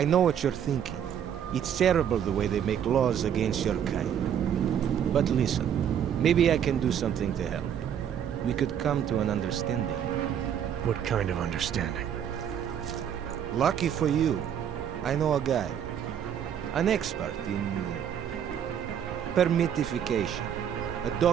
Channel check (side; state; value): left; quieter; 9.0 dB